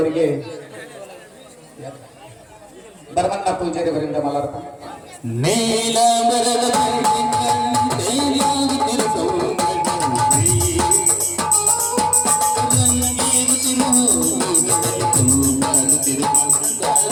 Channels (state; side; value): identical; both; correlation 1.00